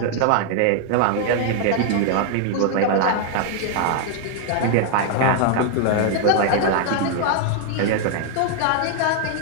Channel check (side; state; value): both; different; correlation 0.00